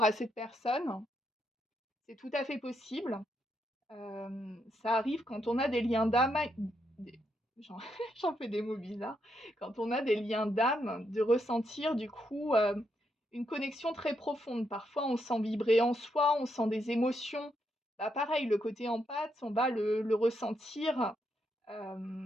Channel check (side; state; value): both; normal; correlation 0.79